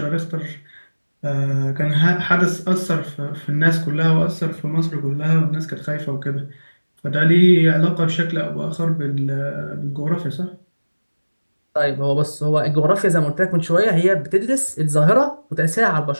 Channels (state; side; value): inverted; both; correlation -1.00